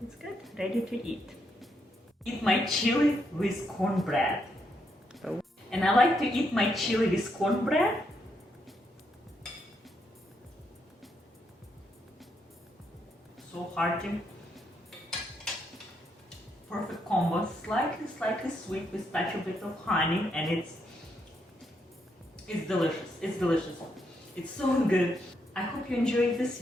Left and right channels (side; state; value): both; normal; correlation 0.78